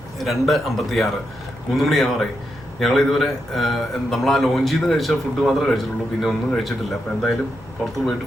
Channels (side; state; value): left; noise; rumble, 21 dB below the sound